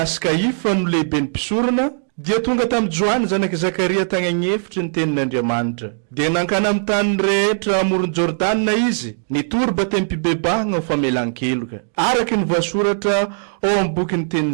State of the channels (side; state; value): left; silent; digital silence